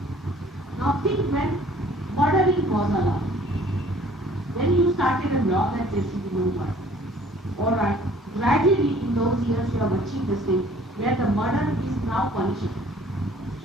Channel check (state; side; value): normal; both; correlation 0.54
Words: Now think when murdering was allowed. When you started a law that there should be no murder. Alright, gradually in those years you have achieved the stage where the murder is now punishable.